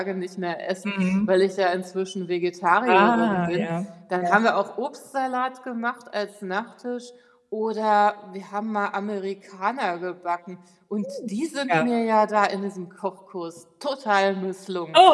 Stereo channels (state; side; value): identical; both; correlation 1.00